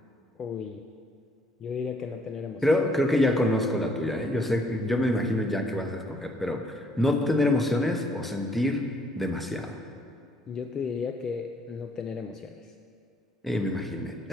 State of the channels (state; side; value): normal; both; correlation 0.66